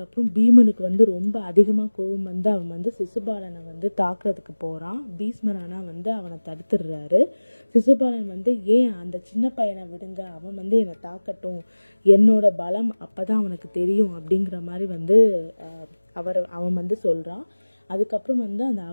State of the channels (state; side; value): inverted; both; correlation -1.00